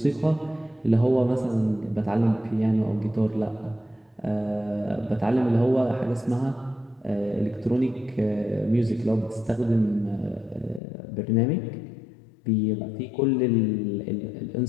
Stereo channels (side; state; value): right; drops out; at 10.8 s